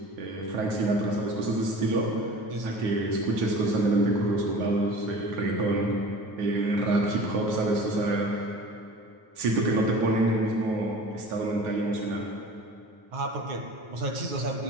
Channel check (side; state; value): left; late; 9.3 ms